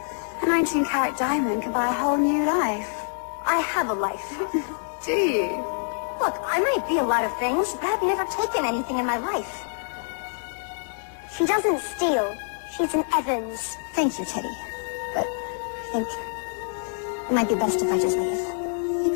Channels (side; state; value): right; silent; digital silence